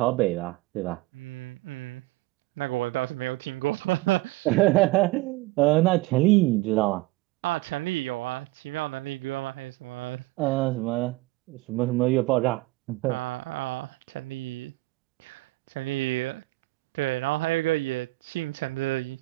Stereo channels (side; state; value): left; quieter; 20.3 dB